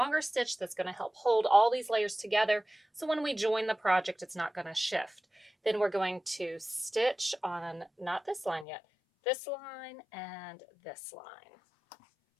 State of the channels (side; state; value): right; drops out; at 8.7 s